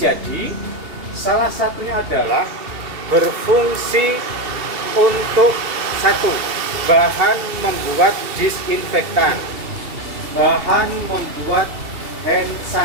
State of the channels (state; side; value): late; left; 2.8 ms